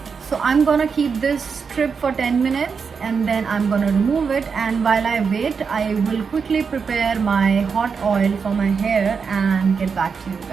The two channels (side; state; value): left; quieter; 5.7 dB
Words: So I'm gonna keep this strip for 10 minutes and then I'm gonna remove it, and while I wait I will quickly prepare my hot oil for my hair and get back to you